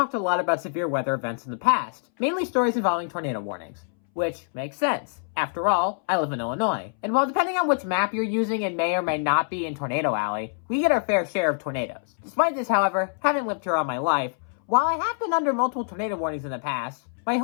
a lot about severe weather events in the past, mainly stories involving tornado warnings. Which makes sense. After all, I live in Illinois, and while depending on which map you're using it may or may not be in Tornado Alley, we get our fair share of tornadoes. Despite this, however, having lived here all my life, while I have been under multiple tornado warnings in the past, my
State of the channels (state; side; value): silent; right; 62 dB below the other